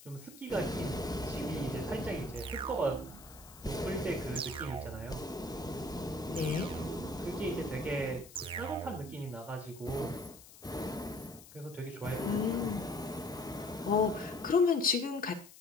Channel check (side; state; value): left; noise; hiss, 19 dB below the sound